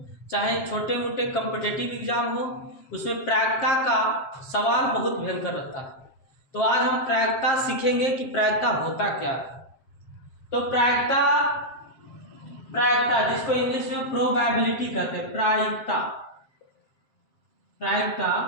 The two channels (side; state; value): right; late; 7.6 ms